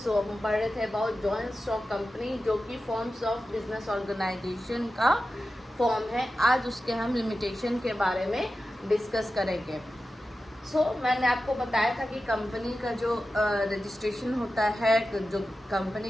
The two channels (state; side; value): normal; both; correlation 0.93